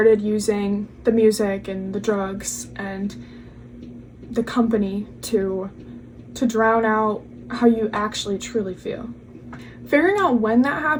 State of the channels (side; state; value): both; identical; correlation 1.00